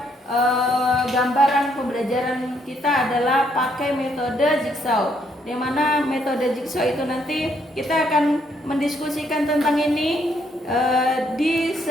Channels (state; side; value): normal; both; correlation 0.72